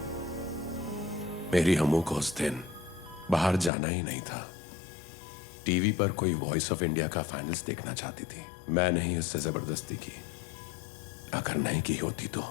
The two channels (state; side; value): drops out; right; at 3.7 s